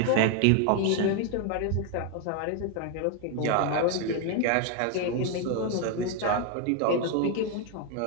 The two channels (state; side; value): different; both; correlation 0.01